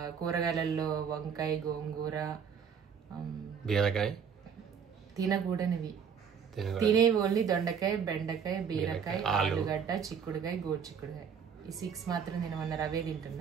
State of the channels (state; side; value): quieter; left; 7.1 dB